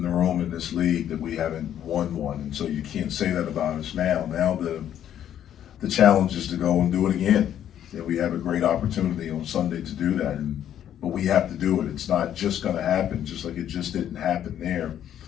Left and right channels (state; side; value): quieter; right; 10.5 dB